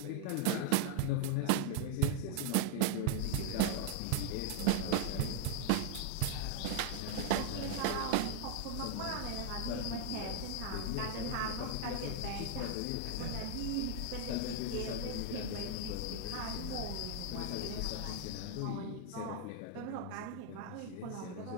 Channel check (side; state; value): both; different; correlation 0.00